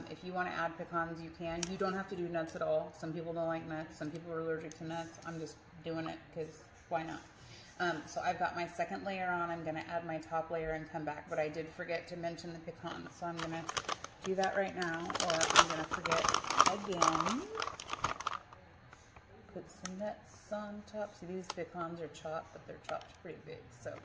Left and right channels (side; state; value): both; identical; correlation 1.00